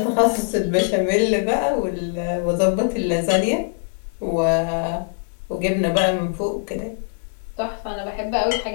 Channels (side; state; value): right; silent; 60 dB below the other